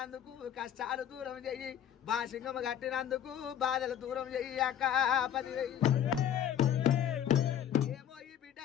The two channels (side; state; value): right; quieter; 9.8 dB